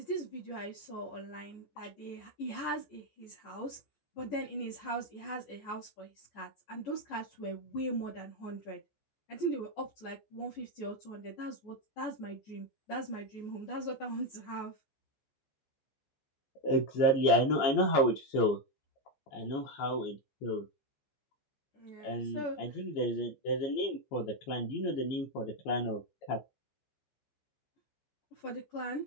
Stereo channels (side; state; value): right; late; 14 ms